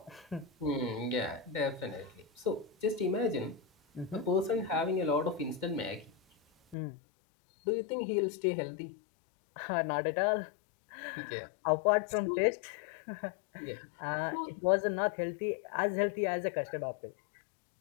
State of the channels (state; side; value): drops out; right; at 6.8 s